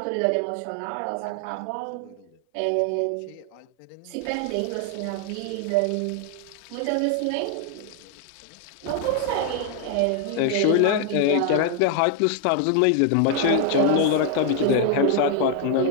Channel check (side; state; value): both; different; correlation 0.00